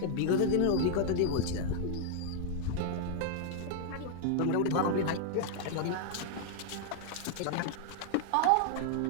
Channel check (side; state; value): both; different; correlation 0.00